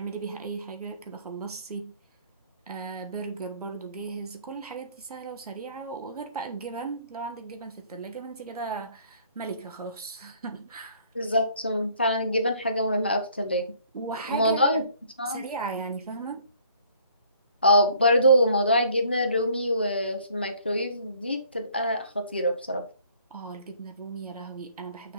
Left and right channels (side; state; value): both; inverted; correlation -0.58